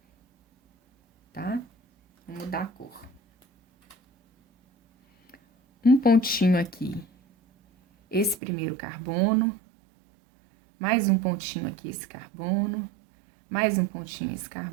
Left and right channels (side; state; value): left; drops out; at 8.4 s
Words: Tá? Vou mudar a cor. Um pontinho aqui. Esse primeiro carbono. Mais um pontinho aqui, esse carbono. Mais um pontinho, esse